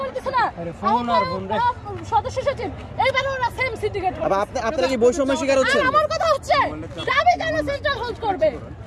দিছে না সদস্য সচিব এইবার ওরা সেম সিন্ডিকেট করে আপনারা কি বৈষম্য শিকার হচ্ছেন আমার কথা হচ্ছে দাবি কেন সেন্ট্রাল হোল্ড করবে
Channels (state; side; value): identical; both; correlation 1.00